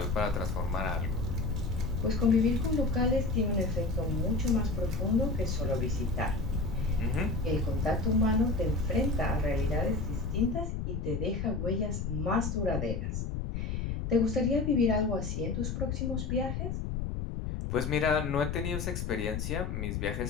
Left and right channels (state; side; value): noise; left; rumble, 2 dB below the sound